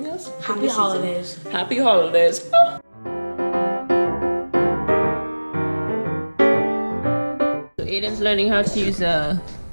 else. Happy holidays. Happy holidays. Oh. So Aiden's learning how to use a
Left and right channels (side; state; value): both; inverted; correlation -1.00